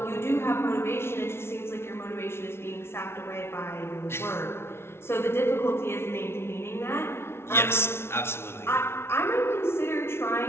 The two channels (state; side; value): late; right; 0.12 ms